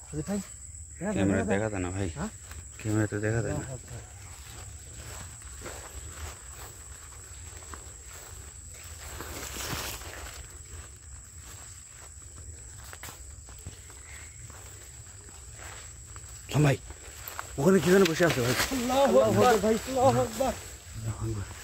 ক্যামেরা দেখা যায় না ভাই, ক্যামেরাতে দেখা যায় না। ভাই ওখানে কি যেন বসে আছে ভাই,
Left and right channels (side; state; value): both; identical; correlation 1.00